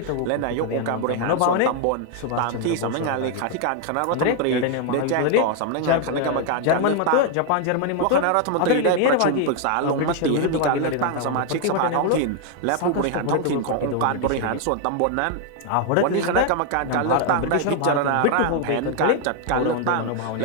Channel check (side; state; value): both; different; correlation 0.00